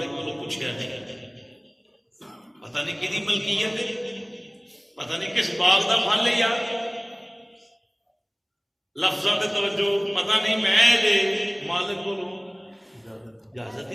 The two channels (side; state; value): both; identical; correlation 1.00